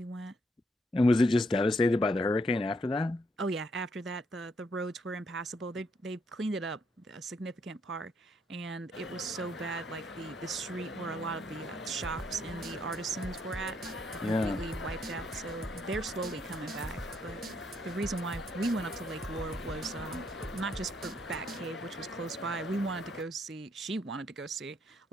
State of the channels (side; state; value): both; normal; correlation 0.73